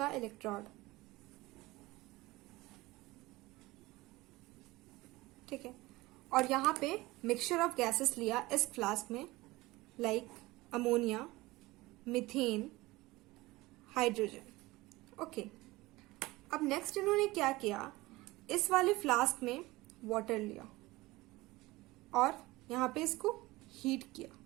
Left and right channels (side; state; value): left; quieter; 20.1 dB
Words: इलेक्ट्रोड। ठीक है, और यहां पे मिक्सचर ऑफ गैसेस लिया इस फ्लास्क में, like ammonia, methane, hydrogen. Okay, अब नेक्स्ट इन्होंने क्या किया, इस वाले फ्लास्क में वाटर लिया और यहां पे इसको हीट किया।